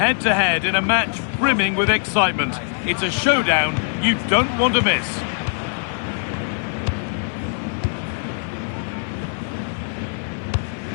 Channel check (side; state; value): right; silent; digital silence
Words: in a match brimming with excitement. It's a showdown you don't want to miss.